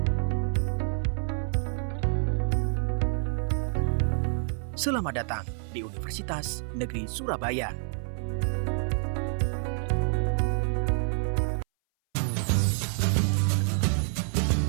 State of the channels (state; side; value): silent; left; 58 dB below the other